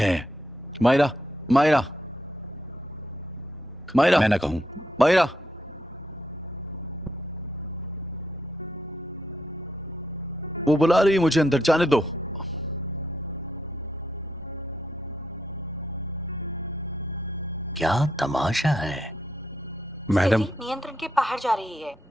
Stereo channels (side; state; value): both; normal; correlation 0.78